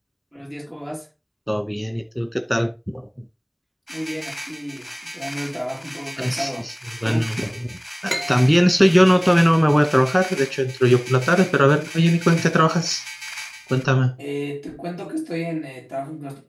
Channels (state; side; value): identical; both; correlation 1.00